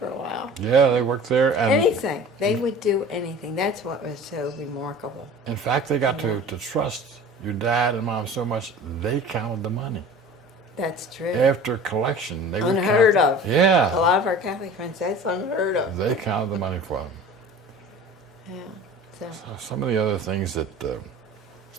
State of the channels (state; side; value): normal; both; correlation 0.41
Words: a while. Yeah, they worked there. And Anything. They would do anything. That's what was so remarkable. in fact, they got to trust your dad and mom so much, they counted the money. That's true. After collection, they would Unheard count, of. Yeah. A lot of our Catholic friends, that's unheard of. They counted the money for them. Yeah. So, Some of the other things that